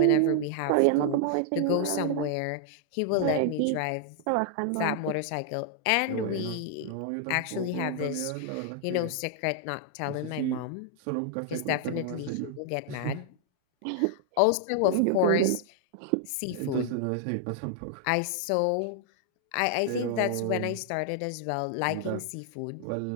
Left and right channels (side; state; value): both; different; correlation 0.00